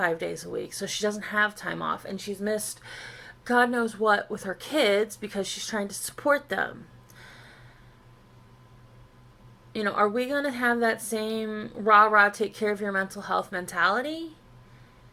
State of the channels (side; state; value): both; identical; correlation 1.00